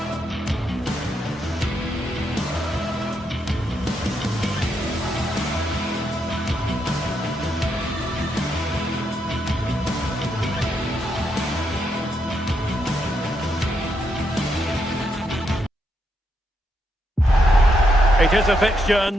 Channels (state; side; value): normal; both; correlation 0.80